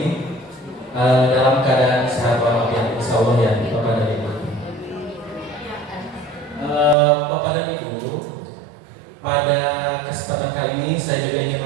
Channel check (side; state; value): left; drops out; at 7.0 s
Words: dalam keadaan sehat walafiat insyaallah ya Bapak dan Ibu. Bapak dan Ibu, pada kesempatan kali ini saya juga ingin